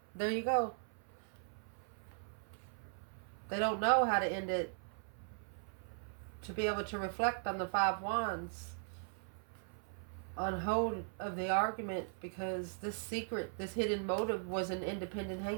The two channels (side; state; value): left; silent; 52 dB below the other